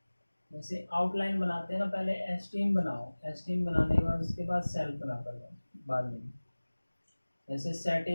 जैसे आउटलाइन बनाते हैं ना, पहले एस्टीम बनाओ, एस्टीम बनाने के बाद उसके बाद सेल्फ बना कर लो बाद में। जैसे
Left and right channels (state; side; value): inverted; both; correlation -1.00